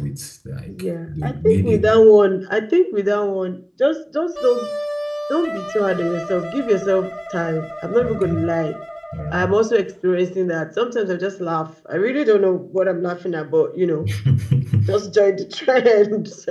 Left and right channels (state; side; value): identical; both; correlation 1.00